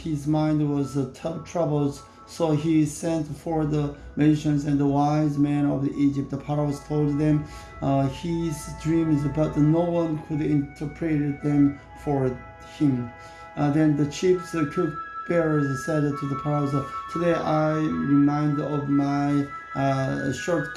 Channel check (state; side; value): identical; both; correlation 1.00